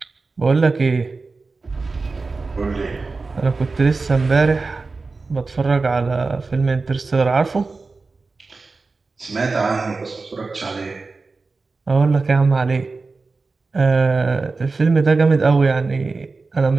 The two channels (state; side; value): quieter; left; 4.0 dB